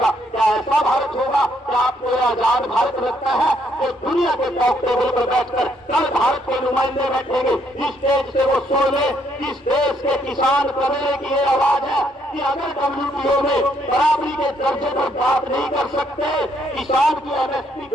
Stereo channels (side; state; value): both; normal; correlation 0.71